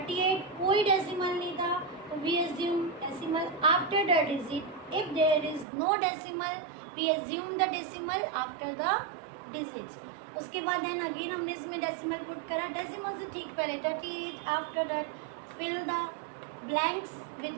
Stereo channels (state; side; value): drops out; left; at 5.7 s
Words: कोई डेसिमल नहीं था तो we assume decimal after the digit. If there is no decimal we assume the decimal after the digits. उसके बाद देन अगेन हमने इसमें डेसिमल पुट करा, डेसिमल से ठीक पहले 38, after that fill the blanks with